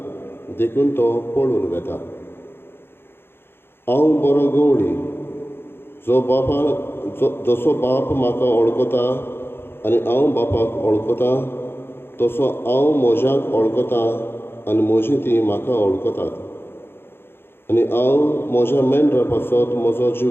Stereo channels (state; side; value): late; right; 0.11 ms